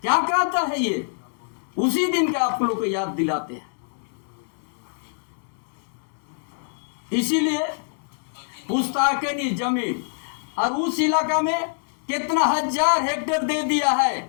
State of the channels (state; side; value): silent; right; digital silence